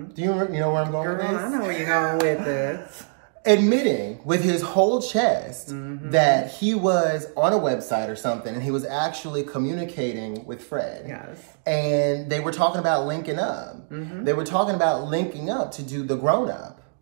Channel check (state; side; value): silent; left; digital silence